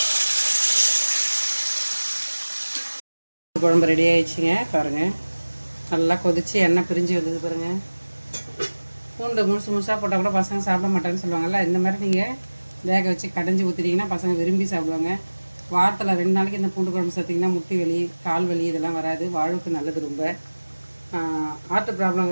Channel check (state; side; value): inverted; both; correlation -1.00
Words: குழம்பு ரெடி ஆகிடுச்சிங்க. பாருங்கள், நல்லா கொதித்து எண்ணெய் பிரிஞ்சு வந்தது பாருங்கள். பூண்டு முழுசாக போட்டால் கூட பசங்க சாப்பிட மாட்டேன்னு சொல்லுவாங்கள்ல, இந்த மாதிரி நீங்கள் வேக வச்சு கடைஞ்சி ஊற்றிட்டிங்கன்னா பசங்க விரும்பி சாப்பிடுவாங்க. வாரத்தில் 2 நாளைக்கு இந்த பூண்டு குழம்பு சேர்த்திங்கன்னா முட்டி வலி, கால் வலி இதெல்லாம் வராது. வாழ்வுக்கு நல்லது ரொம்ப. ஹார்ட்